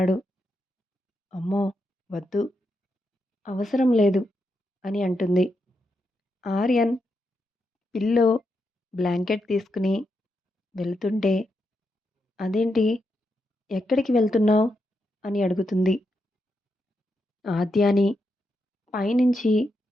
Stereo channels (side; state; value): both; normal; correlation 0.84